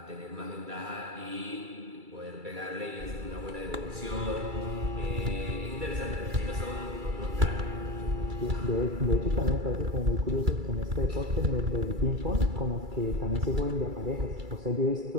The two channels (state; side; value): late; left; 2.3 ms